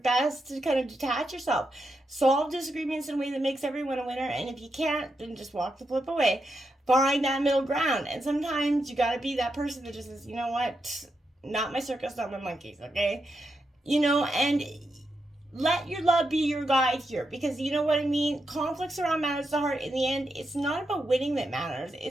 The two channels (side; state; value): both; normal; correlation 0.85